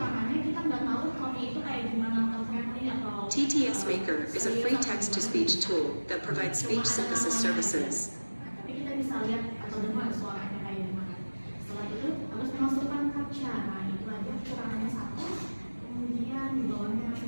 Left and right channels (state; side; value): inverted; both; correlation -1.00